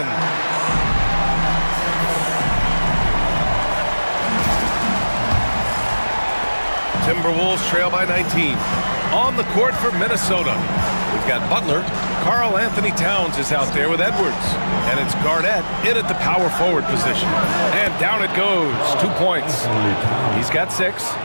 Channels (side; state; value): both; inverted; correlation -1.00